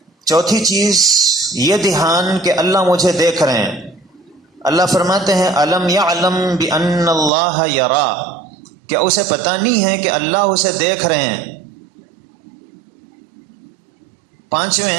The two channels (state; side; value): drops out; left; at 7.3 s